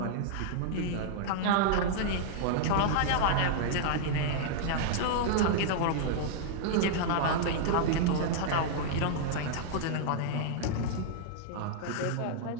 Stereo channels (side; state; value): both; different; correlation -0.01